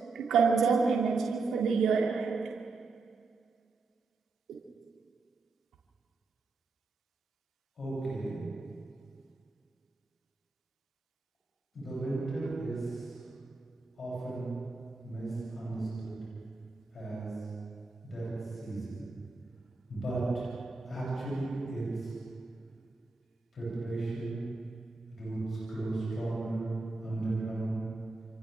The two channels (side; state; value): left; quieter; 3.9 dB